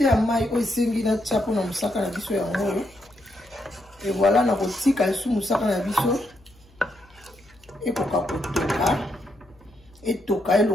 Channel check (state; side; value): noise; left; hum, 29 dB below the sound